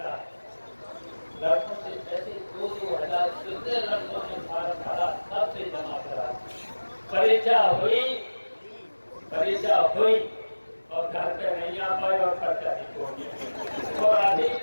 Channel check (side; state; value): both; inverted; correlation -1.00